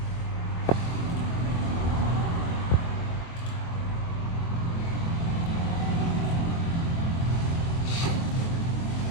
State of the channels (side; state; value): right; late; 23 ms